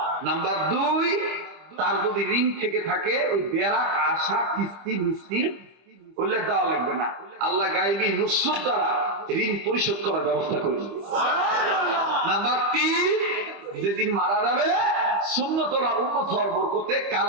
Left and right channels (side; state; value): left; late; 25 ms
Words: নাম্বার 2, তার যদি ঋণ থেকে থাকে ওই বেরাক আশা কিস্তি মিস্তি বললে দেওয়া লাগবে না, আল্লাহ গায়েবী নুসরত দ্বারা ঋণ পরিশোধ করার ব্যবস্থা করে দিবে। নাম্বার 3, যেদিন মারা যাবে সুন্নতলা উম্মত হওয়ার বরকতে